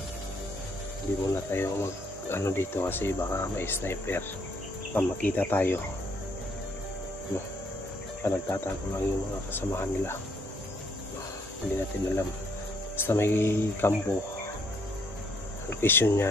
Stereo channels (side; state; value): both; normal; correlation 0.69